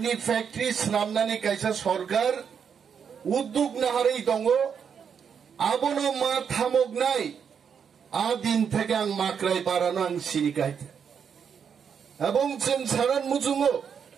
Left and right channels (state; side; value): quieter; left; 7.2 dB